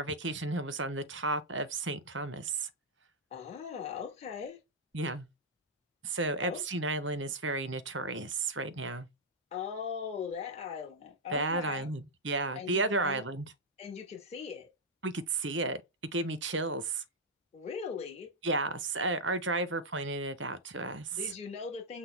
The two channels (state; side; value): normal; both; correlation -0.05